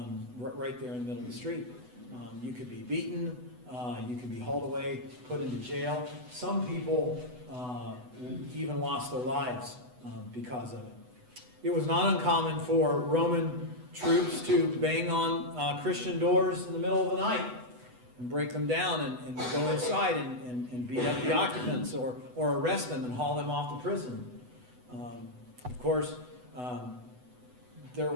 right there in the middle of the street. You could be beaten, you could be hauled away, put into jail. Some people even lost their lives because of it. It was not uncommon for Roman troops to bang on Christian doors in the middle of the night and break them down and go inside and beat up the occupants or arrest them and haul them off to prison. Of course, if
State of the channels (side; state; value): left; late; 8.0 ms